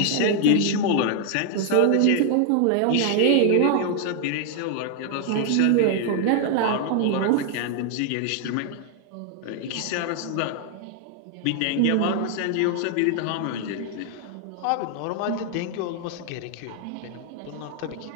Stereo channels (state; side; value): different; both; correlation 0.00